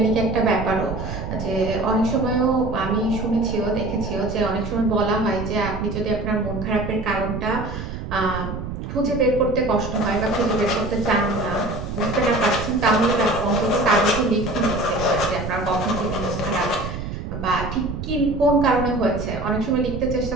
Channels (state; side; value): noise; right; rumble, 7 dB below the sound